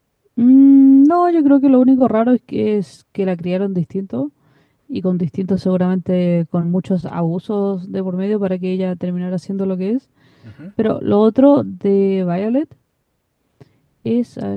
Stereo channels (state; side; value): identical; both; correlation 1.00